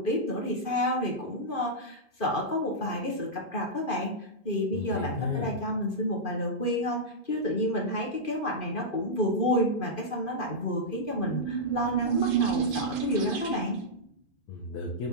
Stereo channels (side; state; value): right; late; 2.5 ms